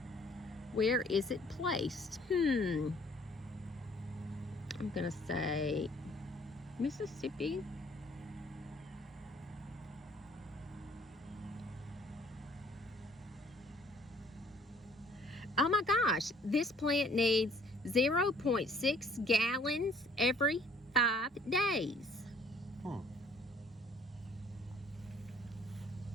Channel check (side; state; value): both; normal; correlation 0.58